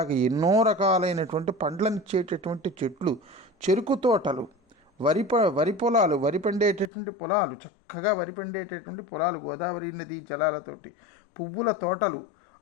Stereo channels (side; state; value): right; drops out; at 6.9 s